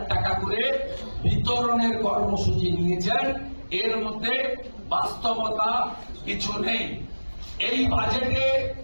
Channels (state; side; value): inverted; both; correlation -1.00